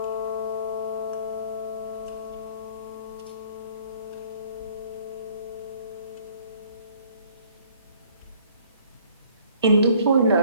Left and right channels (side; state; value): both; inverted; correlation -0.59